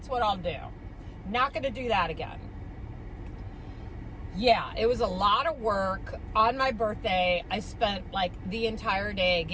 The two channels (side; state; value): both; identical; correlation 1.00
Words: what I'll do. Not going to do that again. Yeah, it was a lot of work. On my birthday, I spent like the entire day